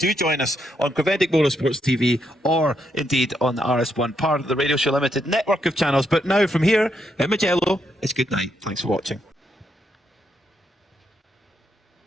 join us on Creventic Motorsports TV or indeed on the RS1, part of the Radio Show Limited network of channels. But now from here in Mugello, it's good night. Thanks for watching.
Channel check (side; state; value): both; normal; correlation 0.79